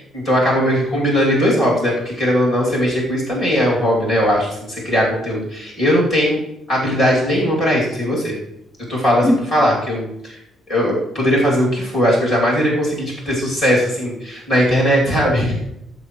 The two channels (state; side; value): normal; both; correlation 0.69